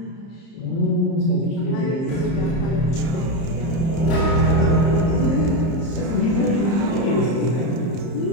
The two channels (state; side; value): late; right; 30 ms